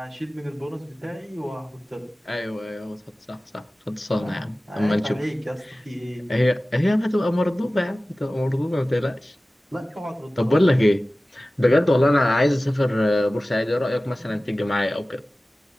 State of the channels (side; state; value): both; normal; correlation 0.97